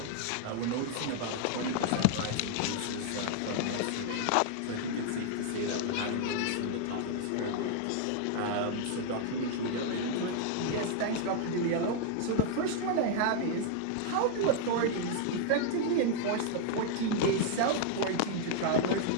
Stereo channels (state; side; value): different; both; correlation 0.00